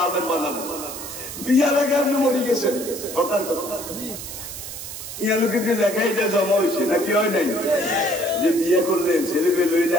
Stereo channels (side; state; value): right; noise; hiss, 10 dB below the sound